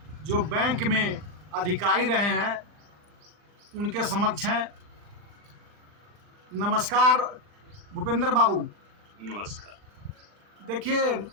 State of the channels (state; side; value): late; left; 40 ms